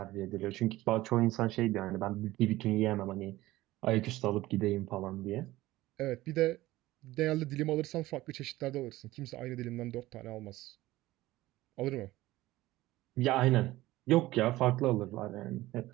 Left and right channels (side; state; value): left; quieter; 17.2 dB